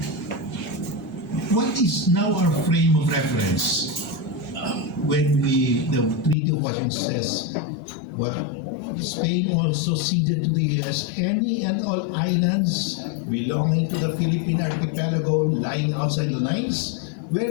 what is now our frame of reference when the Treaty of Washington says, well, Spain also ceded to the US any and all islands belonging to the Philippine archipelago lying outside the lines?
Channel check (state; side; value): drops out; right; at 6.4 s